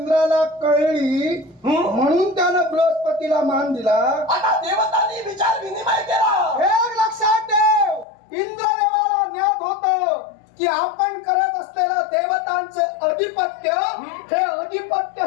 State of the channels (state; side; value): drops out; right; at 8.1 s